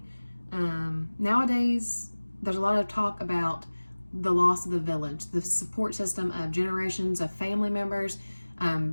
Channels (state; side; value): inverted; both; correlation -1.00